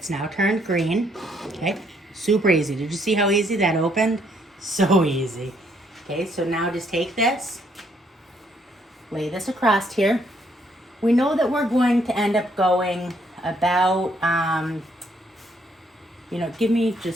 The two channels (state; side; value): normal; both; correlation 0.70